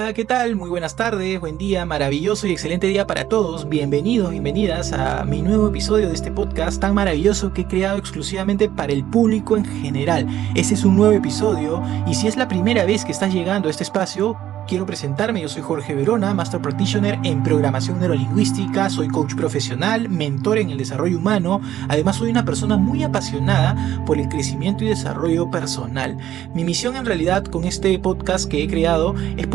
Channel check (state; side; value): quieter; left; 12.1 dB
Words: ¿qué tal? Muy buenas tardes, buen día, maravilloso y excelente día para todos. Bienvenidos, bienvenidas a mi nuevo episodio de este podcast tan maravilloso que he creado exclusivamente para el público en general. Este es un nuevo episodio y si es la primera vez que estás llegando a este espacio, quiero presentarme. Yo soy Jorge Verona, Master Practitioner en Programación Neurolingüística, soy coach profesional, mentor en el desarrollo humano, además soy una persona muy apasionada por el crecimiento y desarrollo personal. Mi misión en realidad con este podcast que he creado es